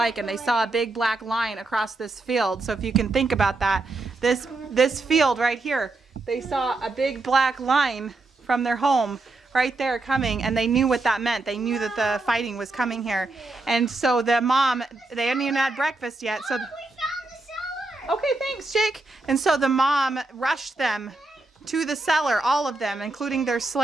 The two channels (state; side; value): quieter; left; 3.2 dB